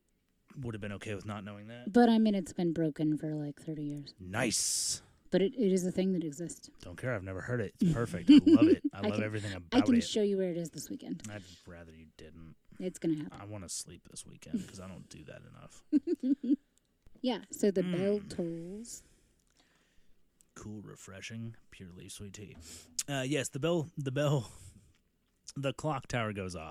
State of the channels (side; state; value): both; identical; correlation 1.00